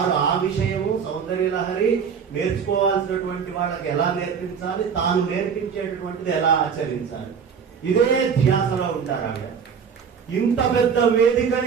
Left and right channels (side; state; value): left; quieter; 6.7 dB